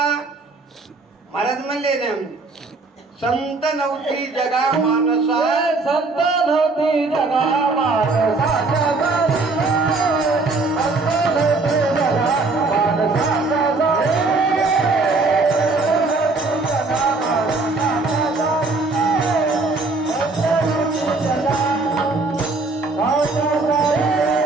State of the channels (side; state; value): left; quieter; 3.6 dB